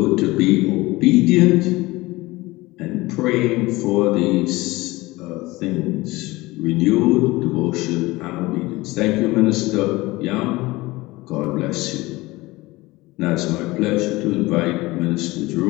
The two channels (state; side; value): quieter; right; 20.6 dB